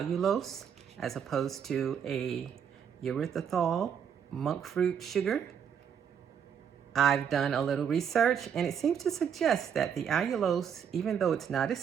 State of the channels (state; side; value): quieter; left; 7.9 dB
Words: as opposed to a erythritol monk fruit sugar. I've done a little research and it seems to suggest that the allulose, even though it's not as